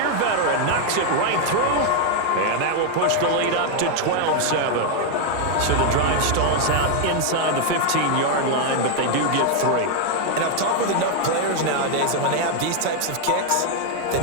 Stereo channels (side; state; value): both; different; correlation 0.01